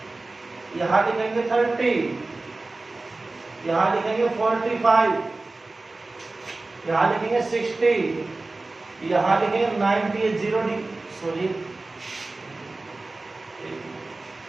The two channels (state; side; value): quieter; left; 3.2 dB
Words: यहां लिखेंगे 30, यहां लिखेंगे 45, यहां लिखेंगे 60, यहां लिखेंगे 90, 0 सॉरी